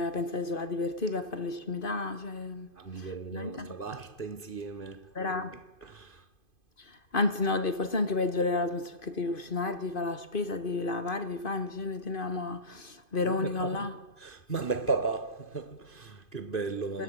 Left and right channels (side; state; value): right; late; 2.5 ms